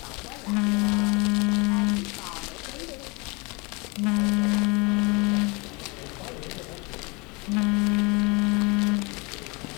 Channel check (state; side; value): quieter; right; 28.1 dB